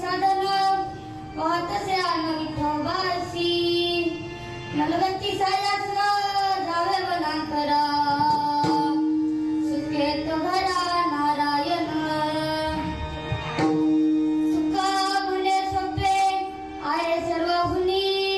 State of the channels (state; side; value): identical; both; correlation 1.00